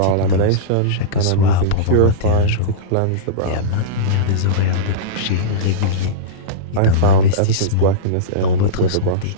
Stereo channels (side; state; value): both; different; correlation -0.05